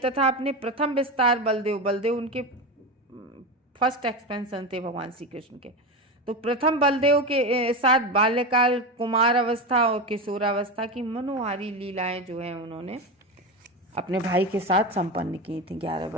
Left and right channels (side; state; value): both; normal; correlation 0.19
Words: अपने प्रथम विस्तार बलदेव उनके फर्स्ट एक्सपेंशन थे भगवान श्री कृष्ण के, तो प्रथम बलदेव के साथ बाल्यकाल, कुमार अवस्था और किशोरावस्था की मनोहारी लीलाएं जो हैं उन्होंने अपने भाई के साथ संपन्न की थी 11